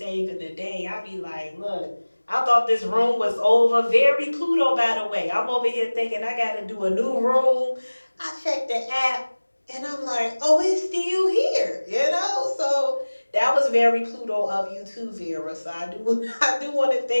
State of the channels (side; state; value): both; inverted; correlation -1.00